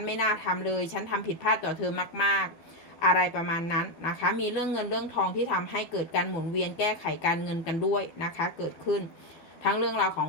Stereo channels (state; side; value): late; right; 12 ms